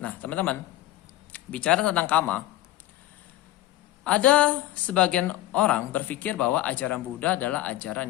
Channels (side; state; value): right; quieter; 15.0 dB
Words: Nah, teman-teman, bicara tentang kama, ada sebagian orang berpikir bahwa ajaran Buddha adalah ajaran